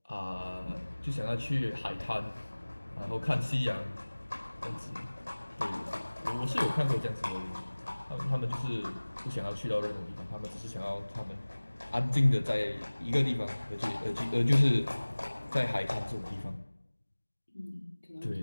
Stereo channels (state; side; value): inverted; both; correlation -1.00